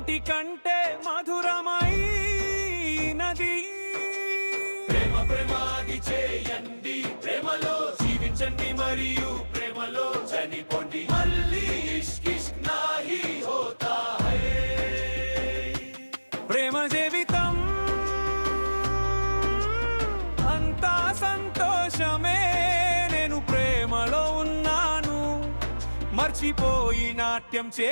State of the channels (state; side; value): inverted; both; correlation -1.00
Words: మధురమైనది. ప్రేమ ప్రేమ అది చేయండి, ప్రేమలో జీవించండి మరియు ప్రేమలో చనిపోండి. మళ్ళీ ఇష్క్ ఇష్క్ నాహీ హోతా హై. ప్రేమ జీవితం అంతా సంతోషమే. నేను ప్రేమలో ఉన్నాను, మర్చిపోయి నాట్యం